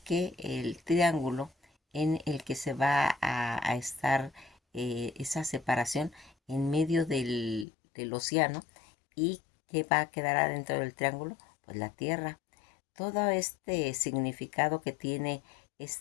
el triángulo en el que se va a estar esa separación en medio del océano y que va a quedar adentro del triángulo, pues la Tierra. Todo este significado que tiene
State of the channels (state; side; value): drops out; right; at 7.7 s